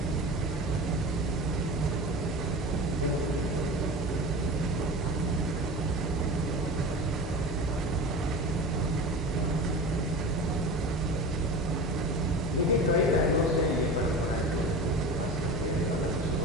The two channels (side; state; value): both; normal; correlation 0.31